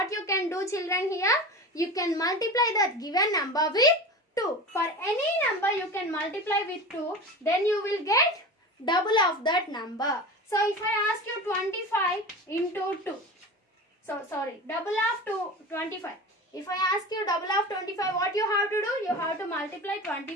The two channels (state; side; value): normal; both; correlation 0.30